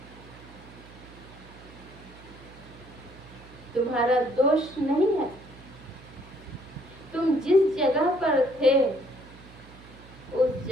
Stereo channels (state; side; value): noise; right; hum, 20 dB below the sound